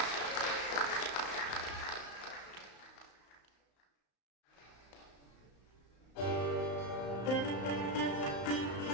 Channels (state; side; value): late; right; 35 ms